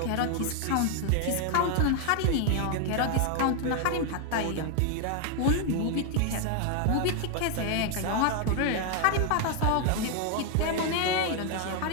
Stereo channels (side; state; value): both; different; correlation 0.00